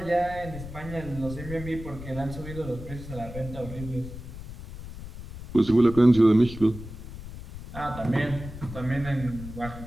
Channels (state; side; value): noise; left; rumble, 12 dB below the sound